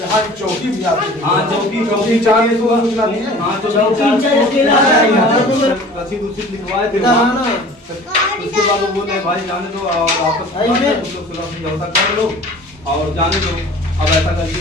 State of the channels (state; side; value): normal; both; correlation 0.44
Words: की चौकी भी आती है? हाँ चौकी चाहिए तो सूचना दी है। हाँ रसीद उसीद लिखवाए थे वहाँ। उसके बाद वो बोले भाई जाने दो और वापस समझौता कर लो और जाने दो, अब ऐसा